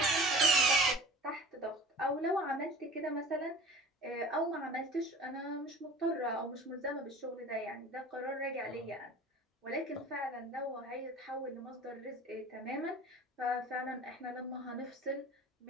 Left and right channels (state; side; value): normal; both; correlation 0.42